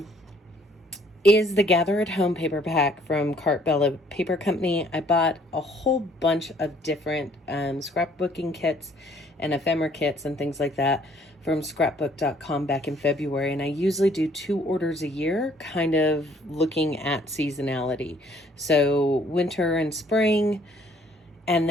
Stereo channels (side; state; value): both; normal; correlation 0.61